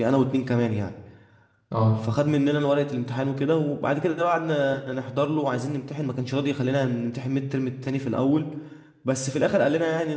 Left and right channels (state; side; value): identical; both; correlation 1.00